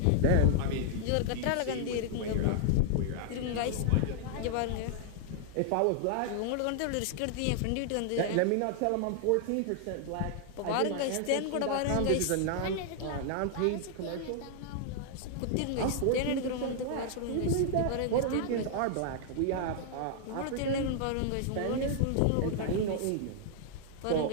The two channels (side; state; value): both; different; correlation 0.00